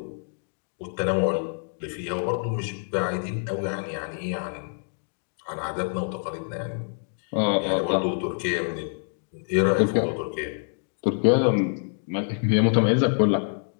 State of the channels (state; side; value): silent; right; 61 dB below the other